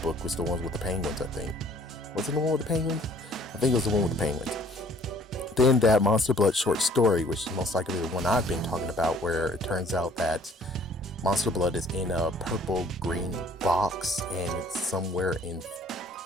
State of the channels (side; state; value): both; normal; correlation 0.57